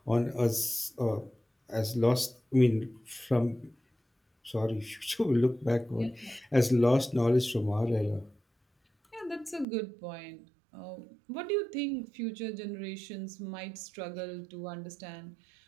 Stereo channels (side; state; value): left; drops out; at 9.7 s